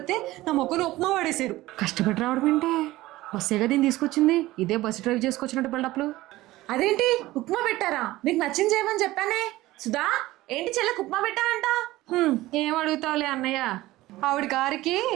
నా మొక్కను ఉప్మా పడేసారు. కష్టపడి రావడం ఏంటే, బస్సేగా దీన్ని తీసుకొచ్చింది. ఇదే బస్సు డ్రైవ్ చేసుకొచ్చినట్టు బిల్డప్లు. అదేంటి ఉప్మా పెట్టారా? నీకు నచ్చింది చేయమని చెప్పానే. సుధా, ఏంటి చెల్లెకు ఉప్మా పెట్టానంట? ఏం అడుగుతావులే అన్నయ్య, ఆవిడ గారికి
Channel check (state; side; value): quieter; left; 17.6 dB